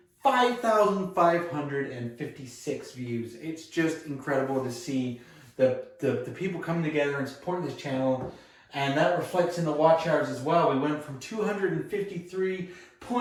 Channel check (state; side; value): identical; both; correlation 1.00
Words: 5,556 views. It's just incredible to see the people coming together and supporting this channel, and that reflects in the watch hours as well. We went from